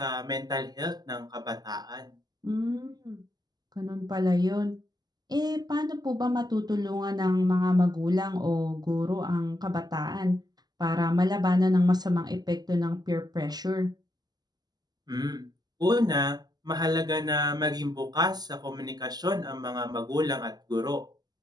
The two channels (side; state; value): left; late; 0.20 ms